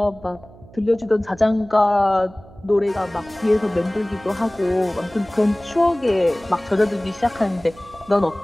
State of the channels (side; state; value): right; noise; hum, 22 dB below the sound